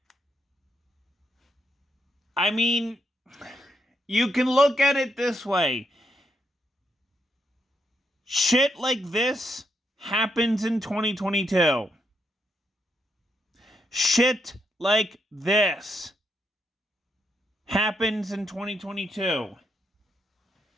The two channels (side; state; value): both; normal; correlation 0.79